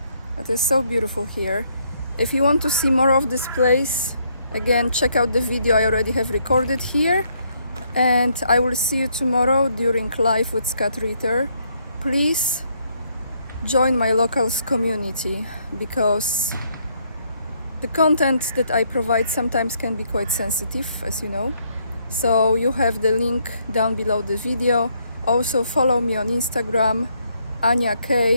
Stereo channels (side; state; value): both; inverted; correlation -0.71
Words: It is so beautiful here. If you want to see more of this place, again, check out the video I already have recorded here. And I will see you tomorrow during Live with Scott Ritter. Please join my locals community, because the content that I provide sometimes can be quite sensitive, as you know. So you have the link down below the video. Also follow me on Instagram,